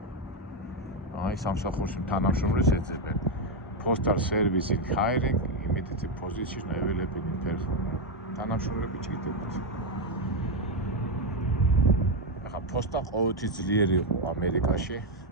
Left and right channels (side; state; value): both; normal; correlation 0.05